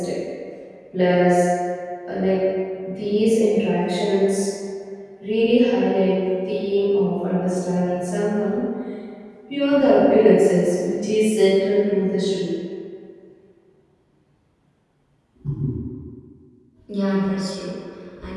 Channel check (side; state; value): both; identical; correlation 1.00